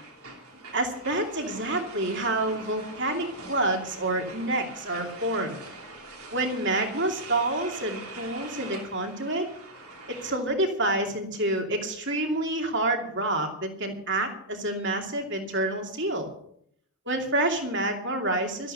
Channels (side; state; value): both; normal; correlation -0.11